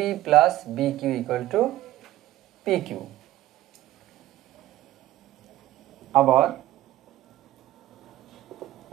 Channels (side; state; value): left; quieter; 15.0 dB